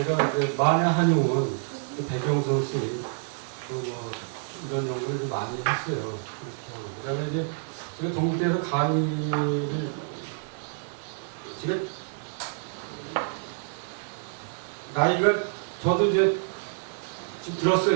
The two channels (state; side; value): silent; left; 60 dB below the other